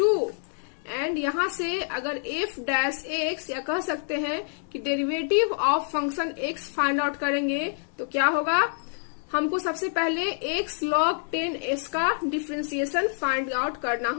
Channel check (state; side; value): silent; right; digital silence